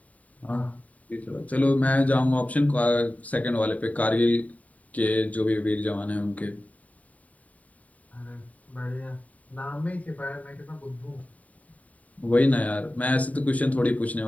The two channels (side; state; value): right; late; 0.070 ms